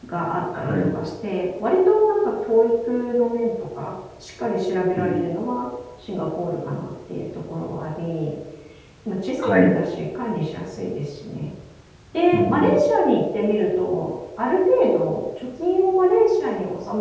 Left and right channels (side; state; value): both; identical; correlation 1.00